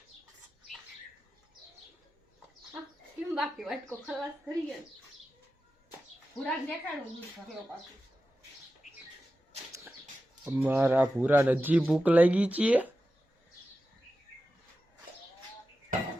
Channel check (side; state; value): both; normal; correlation 0.93